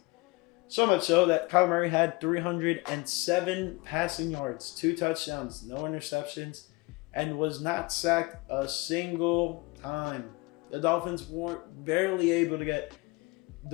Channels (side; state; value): right; quieter; 24.8 dB